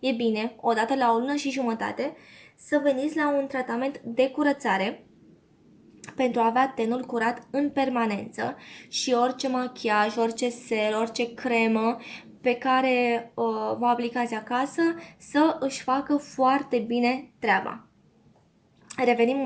bine, odată la o lună și jumătate, să veniți la un tratament de curățare pentru a avea tenul curat în permanență și orice machiaj, orice ser, orice cremă pe care vă aplicați acasă să își facă foarte bine treaba. Revenim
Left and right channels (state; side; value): identical; both; correlation 1.00